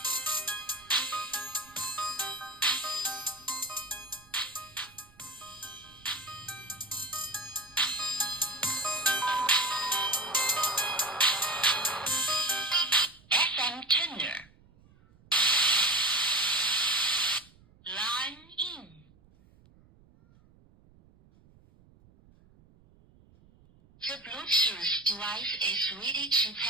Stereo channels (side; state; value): right; noise; rumble, 28 dB below the sound